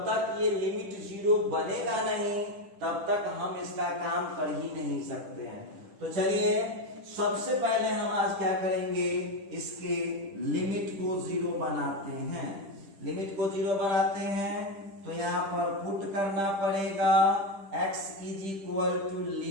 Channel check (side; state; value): left; late; 10 ms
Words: तक ये लिमिट 0 बनेगा नहीं तब तक हम इसका काम कर ही नहीं सकते हैं। तो चलिए सबसे पहले हम आज क्या करेंगे, इसके लिमिट को 0 बनाते हैं। लिमिट को 0 बनाते हैं तो यहाँ पर पुट करना पड़ेगा x is equal to